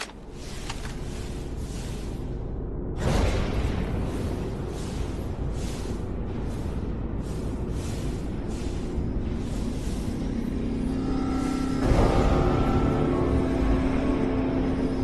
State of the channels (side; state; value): both; identical; correlation 1.00